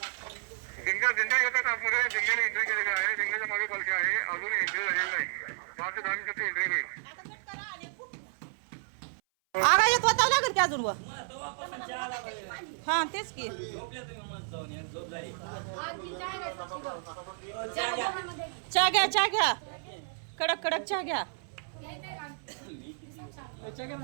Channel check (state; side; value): silent; left; 57 dB below the other